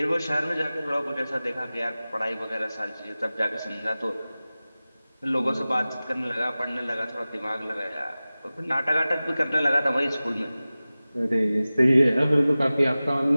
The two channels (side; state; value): both; inverted; correlation -0.97